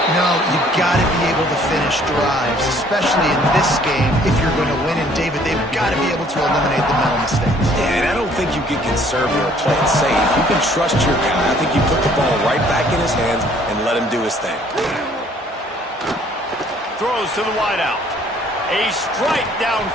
No, you've got to be able to finish drives, especially in this game. If you're going to win, and David, they've got to be able to eliminate the mental mistakes. Yeah, and I don't think you get conservative or play it safe. You can trust your guy. I think you put the ball right back in his hands and let him do his thing. Throws to the wideout. A strike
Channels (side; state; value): both; normal; correlation 0.59